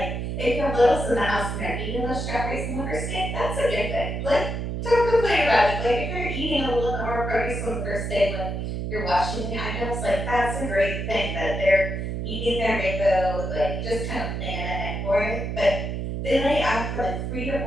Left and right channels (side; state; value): right; noise; hum, 3 dB below the sound